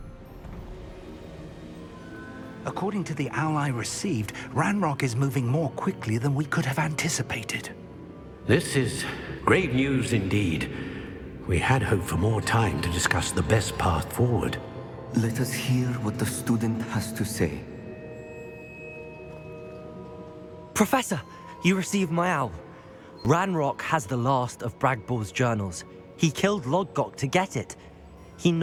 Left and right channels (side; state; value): both; identical; correlation 1.00